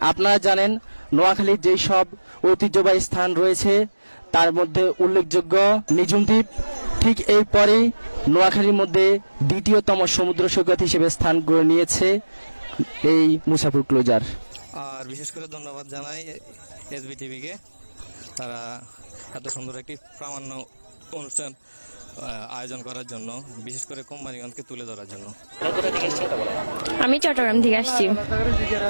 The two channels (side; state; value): both; inverted; correlation -1.00